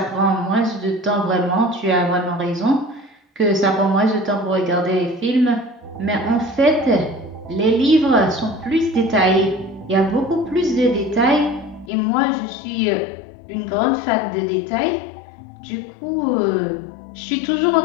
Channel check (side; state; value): right; drops out; at 11.9 s